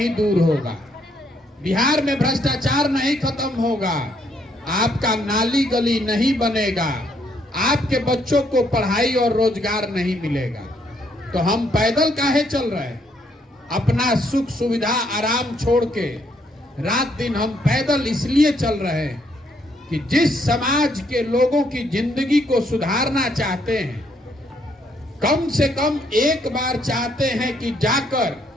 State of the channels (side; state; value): both; normal; correlation 0.71